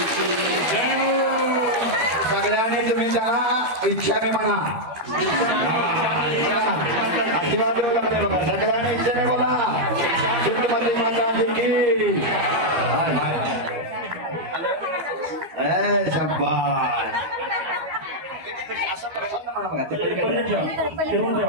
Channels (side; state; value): left; late; 12 ms